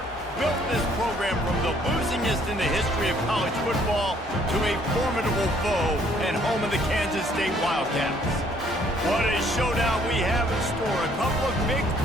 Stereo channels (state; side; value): normal; both; correlation 0.63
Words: built this program from the losingest in the history of college football to a formidable foe and home of the Kansas State Wildcats. What a showdown we have in store. A couple of Big